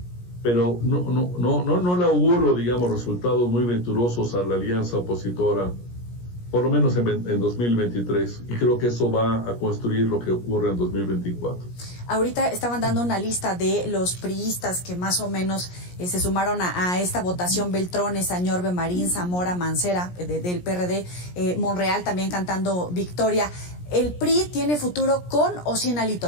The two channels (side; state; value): right; late; 17 ms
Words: pero no le auguro, digamos, resultados muy venturosos a la alianza opositora, por lo menos en 2023, y creo que eso va a construir lo que ocurre en 2024. Ahorita estaban dando una lista de los priistas que más o menos se sumaron a esta votación: Beltrones, Añorbe, Marín, Zamora, Mancera, del PRD, Monreal también cantando victoria. ¿El PRI tiene futuro con o sin Alito,